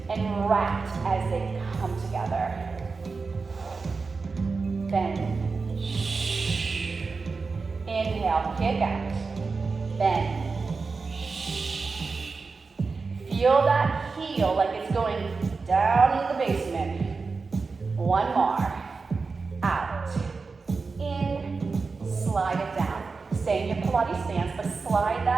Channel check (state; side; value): quieter; left; 4.4 dB